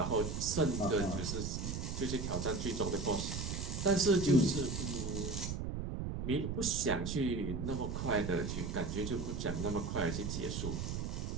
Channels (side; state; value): right; noise; rumble, 3 dB below the sound